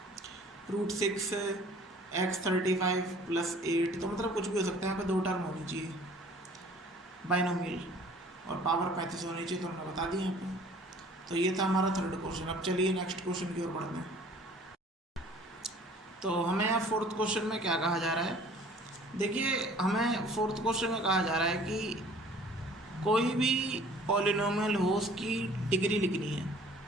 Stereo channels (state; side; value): normal; both; correlation 0.52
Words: √6 x35 + 8, तो मतलब कुछ भी हो सकता है। यहाँ पे दो टर्म होनी चाहिए बाइनोमियल, और पावर 35 होनी चाहिए, तो हमने बता दी यहाँ पे। तो ये था हमारा थर्ड क्वेश्चन। अब चलिए नेक्स्ट क्वेश्चन की ओर बढ़ते हैं। तो हमें यहाँ फोर्थ क्वेश्चन में क्या कहा जा रहा है, देखिए हमें फोर्थ क्वेश्चन में कहा जा रहा है कि कोई भी पॉलिनोमियल हो उसकी डिग्री लिखनी है।